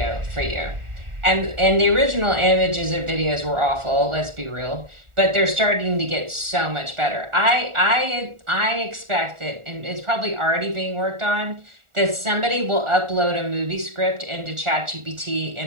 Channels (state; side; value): late; left; 1.4 ms